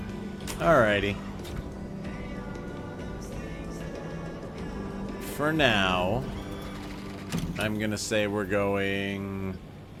Alrighty. For now, I'm gonna say we're going...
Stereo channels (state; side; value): identical; both; correlation 1.00